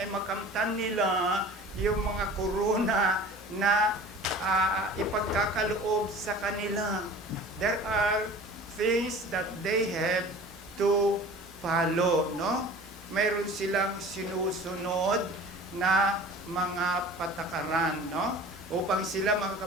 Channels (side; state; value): both; normal; correlation 0.42